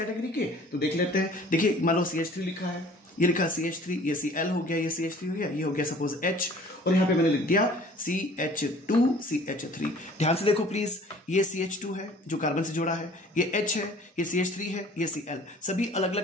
के, तो देख लेते हैं। देखिए मान लो CH3 लिखा है, ये लिखा CH3, ये Cl हो गया, ये CH3 हो गया, ये हो गया सपोज H, और यहां पे मैंने लिख दिया CH2 CH3। ध्यान से देखो प्लीज, ये CH2 है जो कार्बन से जुड़ा है, ये H है, ये CH3 है, ये Cl, सभी अलग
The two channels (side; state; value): both; normal; correlation 0.50